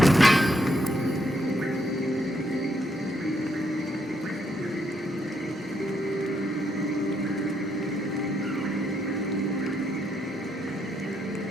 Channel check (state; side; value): normal; both; correlation 0.76